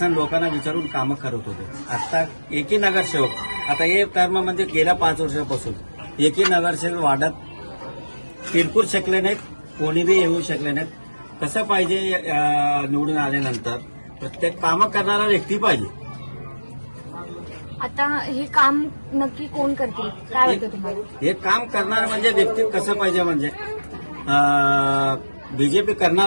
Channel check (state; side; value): inverted; both; correlation -1.00